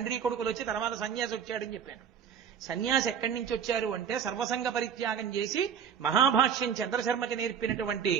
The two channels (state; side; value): quieter; left; 7.8 dB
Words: కొడుకులు వచ్చి తర్వాత సన్యాసి వచ్చాడని చెప్పాను. సన్యాసి ఎక్కడి నుంచి వచ్చారు అంటే సర్వసంగ పరిత్యాగం చేసి మహాభాష్యం చంద్రశర్మకి నేర్పినటువంటి